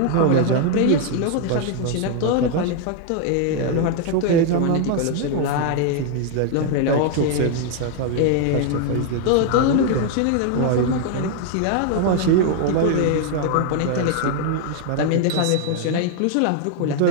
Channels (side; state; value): both; different; correlation 0.00